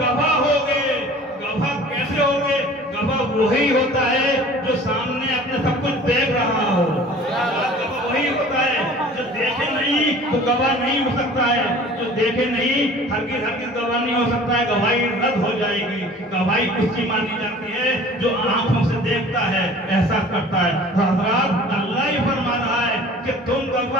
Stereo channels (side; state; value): both; normal; correlation 0.46